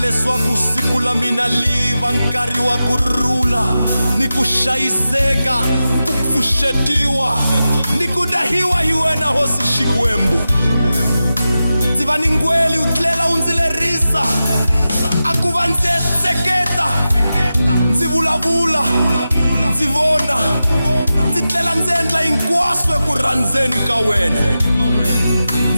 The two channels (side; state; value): both; inverted; correlation -0.93